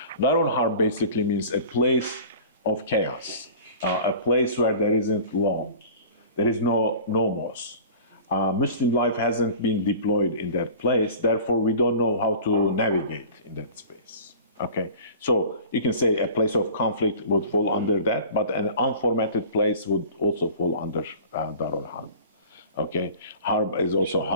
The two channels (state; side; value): inverted; both; correlation -0.41